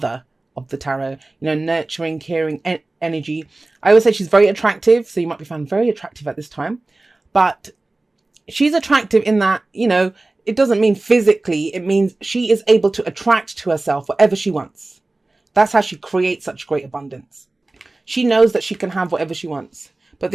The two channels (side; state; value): left; quieter; 3.0 dB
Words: of the tarot, you know, nurturing, caring energy. I always say she's very attractive. So you might be found very attractive at this time, but she's attractive in that, you know, it doesn't mean physically. It means she is able to attract to herself whatever she wants. That's how she creates such great abundance. She knows that she can have whatever she wants. But